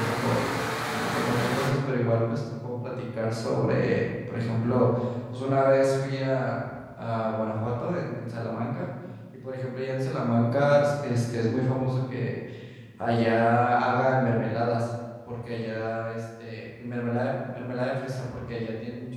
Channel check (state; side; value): identical; both; correlation 1.00